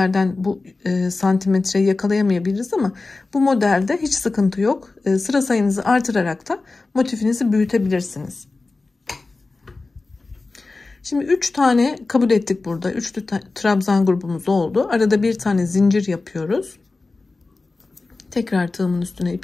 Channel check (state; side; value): quieter; right; 3.6 dB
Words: bu santimetreyi yakalayamayabiliriz ama bu modelde hiç sıkıntı yok. Sıra sayınızı artırarak da motifinizi büyütebilirsiniz. Şimdi 3 tane kabul ettik burada. 3 trabzan grubumuz oldu. Arada bir tane zincir yapıyoruz. Tekrar tığımın üstüne